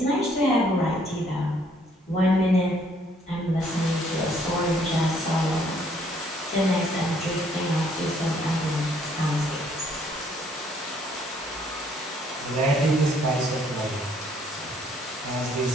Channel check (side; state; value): both; normal; correlation 0.65